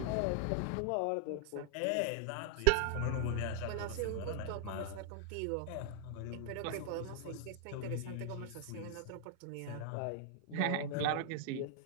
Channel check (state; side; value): different; both; correlation 0.00